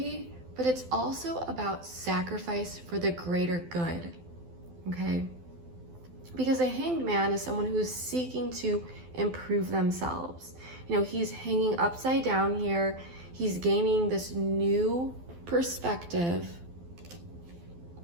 but it's also about sacrifice for the greater good, okay? Because a Hanged Man is someone who's seeking to improve themselves. He's hanging upside down here. He's gaining this new perspective,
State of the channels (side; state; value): left; late; 12 ms